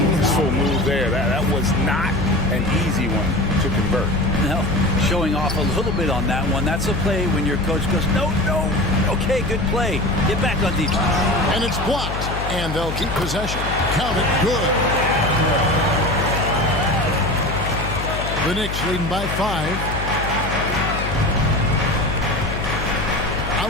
move there. That was not an easy one to convert. No, showing off a little bit on that one. That's a play when your coach goes, no. Okay, good play. Get back on defense. And it's blocked. And they'll keep possession. Count it. Good. The Knicks leading by 5.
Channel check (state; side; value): noise; left; hum, 5 dB below the sound